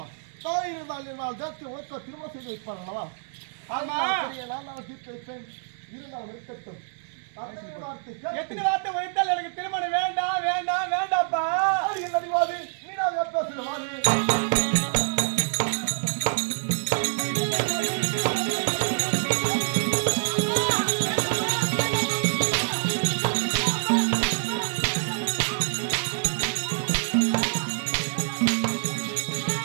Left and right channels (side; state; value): left; silent; 61 dB below the other